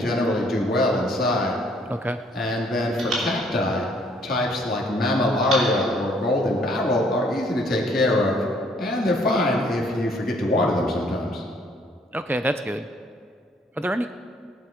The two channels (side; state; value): both; normal; correlation 0.64